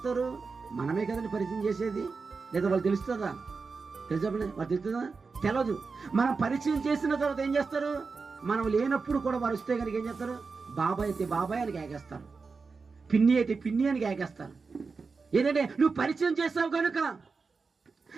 మనమే కదండి పరిచయం చేసేది. లేదా వాళ్ళు తెలుస్తుందా? తెలుసా? వాళ్ళు తెలుస్తుందా? తెలదు. మనం పరిచయం చేసిన తర్వాత ఏం చేస్తారు? మనం లేనప్పుడు కూడా వారు వస్తే కనుక ఏం చేస్తారు? బాబాయ్ అయితే బాబాయ్ అని కేకేస్తారు, పిన్ని అయితే పిన్ని అని కేకేస్తారు. ఏంటంటే నువ్వు పరిచయం చేసావు కనుక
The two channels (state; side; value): quieter; left; 4.6 dB